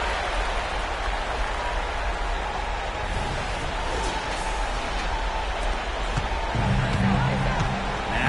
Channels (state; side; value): identical; both; correlation 1.00